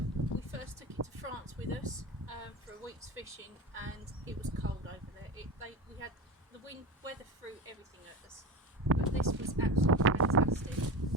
We first took it to France with us for a week's fishing, and it was cold over there. We had the wind, weather threw everything at us, but this was absolutely fantastic.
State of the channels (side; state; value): both; normal; correlation 0.26